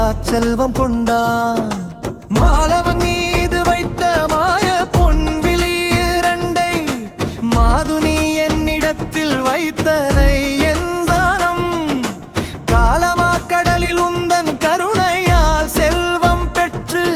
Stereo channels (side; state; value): both; identical; correlation 1.00